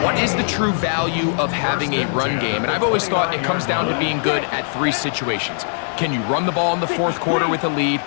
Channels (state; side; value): silent; right; digital silence